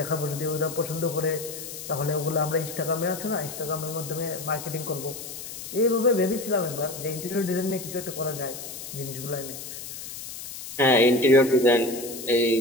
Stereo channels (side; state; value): left; noise; hiss, 10 dB below the sound